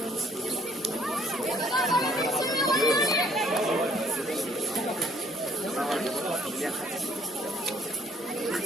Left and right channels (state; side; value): normal; both; correlation 0.62